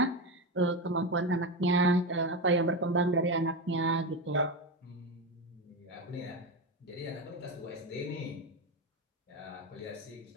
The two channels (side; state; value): both; normal; correlation 0.16